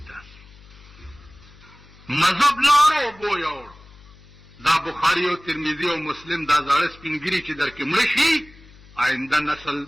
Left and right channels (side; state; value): left; noise; hum, 23 dB below the sound